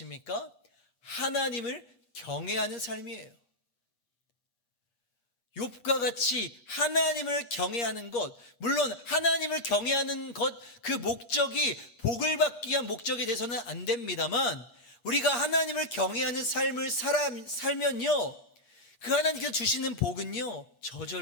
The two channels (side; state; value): right; late; 8.5 ms